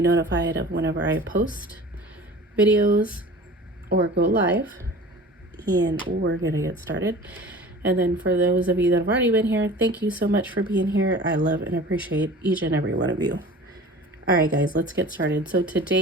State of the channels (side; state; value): both; normal; correlation 0.41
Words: notified of whenever I post videos or go live. And we're gonna get started. And then for those of you that have already been here, thank you so much for being here. I love and appreciate each and every one of you. All right guys, let's get started. So